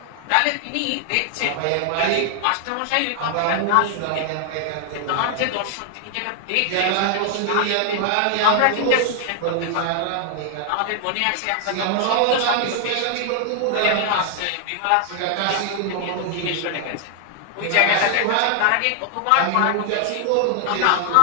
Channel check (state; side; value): different; both; correlation 0.00